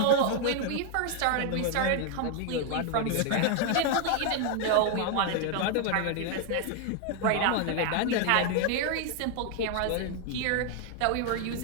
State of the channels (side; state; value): both; different; correlation 0.01